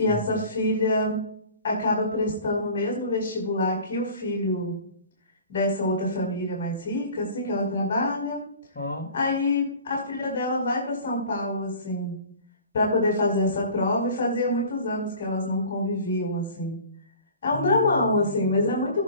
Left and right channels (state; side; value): inverted; both; correlation -0.44